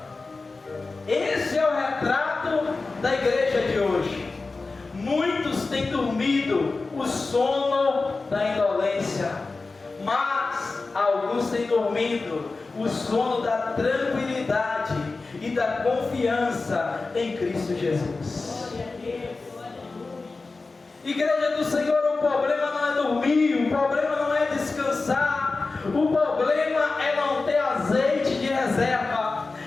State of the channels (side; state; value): right; quieter; 3.8 dB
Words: Esse é o retrato da igreja de hoje. Muitos têm dormido o sono da indolência, mas alguns têm dormido o sono da tranquilidade e da confiança em Cristo Jesus. Igreja do Senhor, o problema não é dormir, o problema não é descansar, o problema é não ter azeite de reserva.